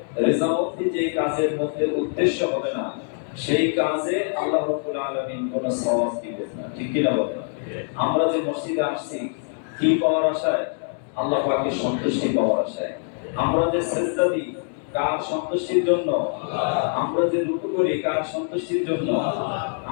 রেজামতি যেই কাজের মধ্যে উদ্দেশ্য হবে না, সেই কাজে আল্লাহ রাব্বুল আলামিন কোনো সওয়াব দিবেন না, ঠিক কি না বলেন? আমরা যে মসজিদে আসছি কি পাওয়ার আশায়? আল্লাহ পাকের সন্তুষ্টি পাওয়ার আশায়। আমরা যে সিজদা দিই কার সন্তুষ্টির জন্য? আমরা যে রুকু করি কার সন্তুষ্টির জন্য?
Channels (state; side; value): silent; right; 57 dB below the other